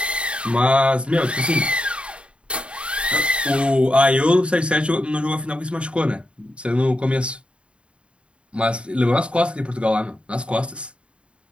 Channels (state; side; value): late; left; 0.058 ms